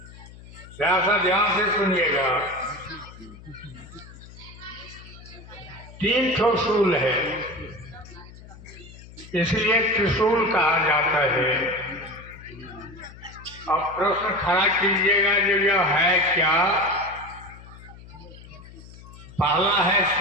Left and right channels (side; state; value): left; noise; hum, 18 dB below the sound